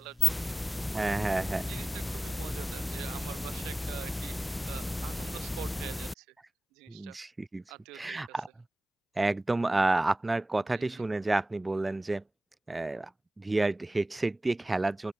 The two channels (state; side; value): normal; both; correlation 0.97